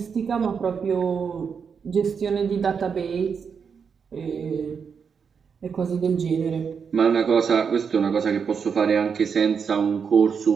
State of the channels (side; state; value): left; quieter; 6.3 dB